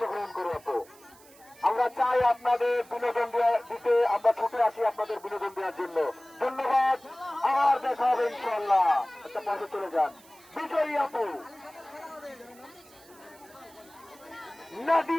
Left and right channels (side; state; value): right; noise; hiss, 25 dB below the sound